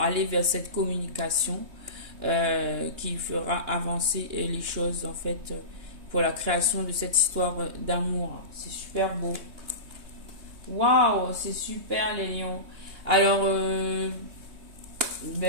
aller vers cette communication qui fera avancer les choses en fait pour la création de cette histoire d'amour. C'est super beau. Waouh, c'est super les lions. Alors,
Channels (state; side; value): late; left; 3.2 ms